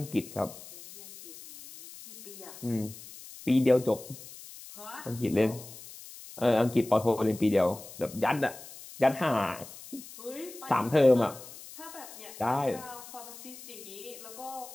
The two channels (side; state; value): left; noise; hiss, 16 dB below the sound